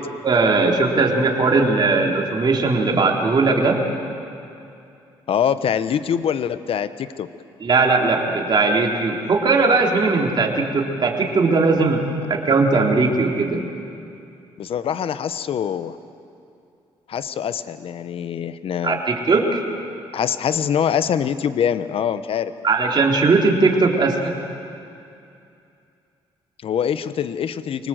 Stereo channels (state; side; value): normal; both; correlation 0.46